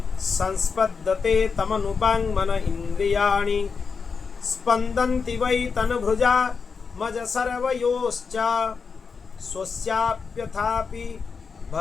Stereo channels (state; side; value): quieter; right; 5.3 dB